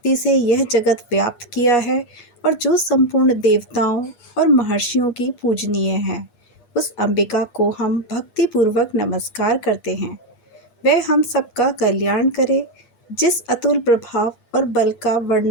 से यह जगत व्याप्त किया है और जो संपूर्ण देवताओं और महर्षियों की पूजनीय है, उस अंबिका को हम भक्तिपूर्वक नमस्कार करते हैं। वह हम सबका कल्याण करे। जिस अतुल प्रभाव और बल का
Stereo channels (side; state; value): right; late; 8.4 ms